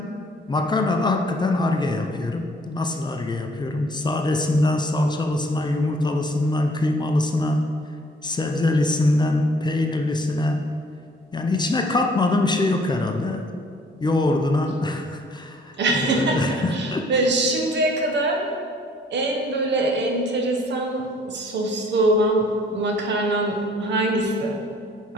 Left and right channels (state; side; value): normal; both; correlation 0.58